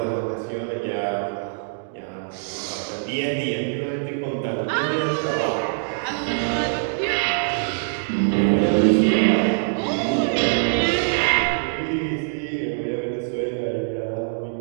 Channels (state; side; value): silent; left; digital silence